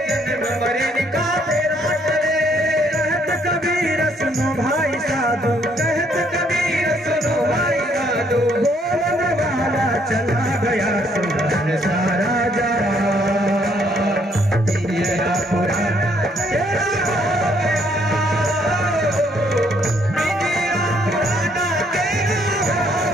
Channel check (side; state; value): both; normal; correlation 0.68